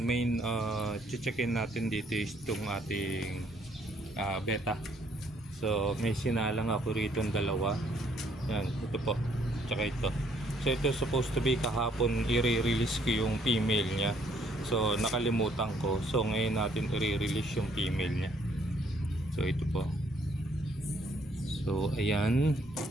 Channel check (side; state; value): both; normal; correlation 0.66